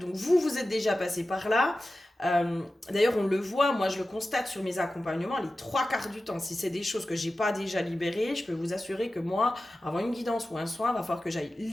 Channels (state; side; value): normal; both; correlation 0.94